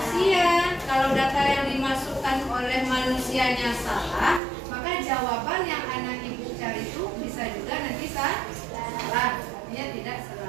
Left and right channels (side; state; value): left; drops out; at 4.4 s